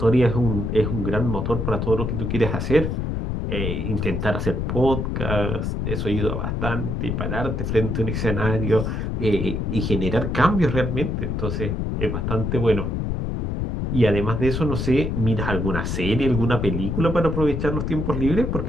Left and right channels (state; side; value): noise; left; rumble, 1 dB below the sound